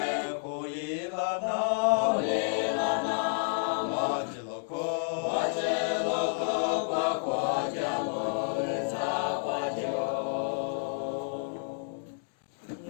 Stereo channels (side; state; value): right; silent; 58 dB below the other